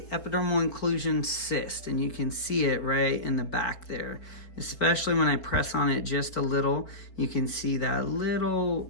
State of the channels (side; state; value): right; late; 4.3 ms